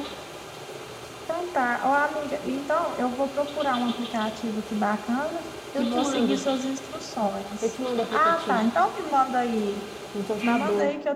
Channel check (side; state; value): both; identical; correlation 1.00